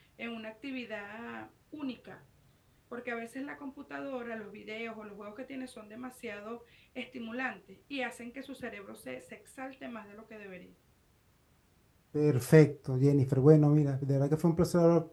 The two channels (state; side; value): identical; both; correlation 1.00